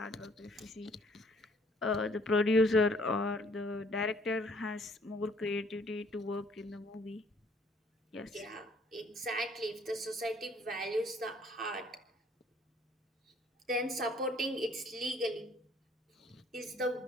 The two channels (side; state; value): both; normal; correlation 0.60